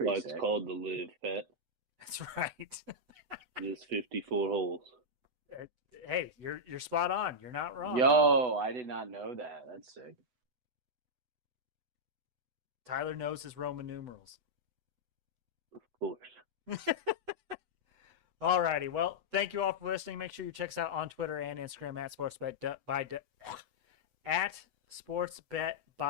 it's called the Live, Pat. That's right. There's 54 holes. Hey, you're spot on. You're not wrong. Yo, I did not know that. That's sick. Tyler knows his Roman numerals. Of course. Alrighty, well, thank you all for listening. Make sure you check us out on Twitter and Instagram at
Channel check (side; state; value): left; late; 8.0 ms